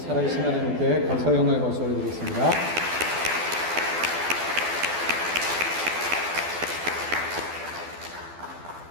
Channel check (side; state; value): left; late; 12 ms